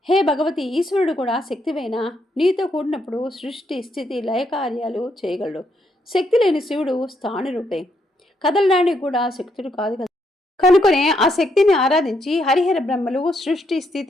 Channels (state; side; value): normal; both; correlation 0.76